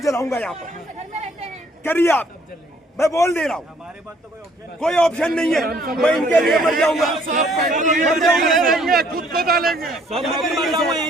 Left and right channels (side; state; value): both; normal; correlation 0.62